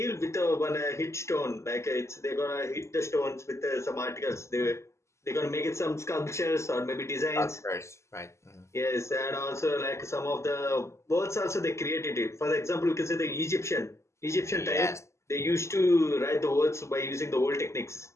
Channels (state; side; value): late; right; 0.13 ms